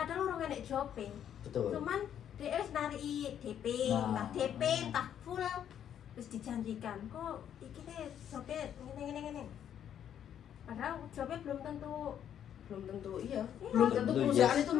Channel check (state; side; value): quieter; right; 9.6 dB